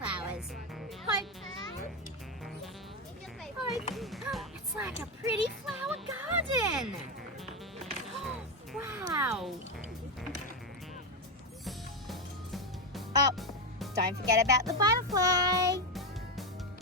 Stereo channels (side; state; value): both; normal; correlation 0.11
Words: Hope. It's like a pretty flower garden. Wow. Oh, don't forget about the butterfly.